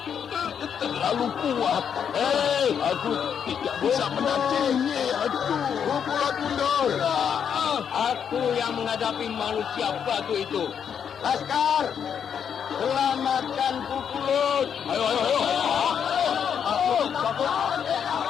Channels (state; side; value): quieter; right; 7.8 dB